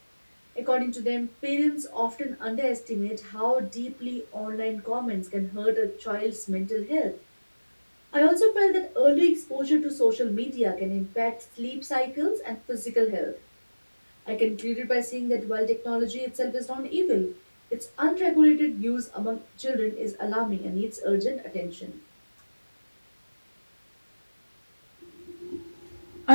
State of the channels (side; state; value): both; inverted; correlation -1.00